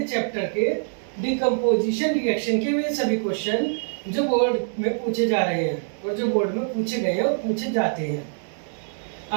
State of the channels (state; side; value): silent; left; 62 dB below the other